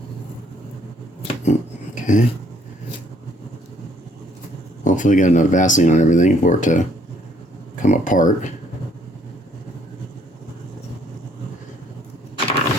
Okay. Hopefully got enough Vaseline on everything for it to come apart.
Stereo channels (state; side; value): normal; both; correlation 0.64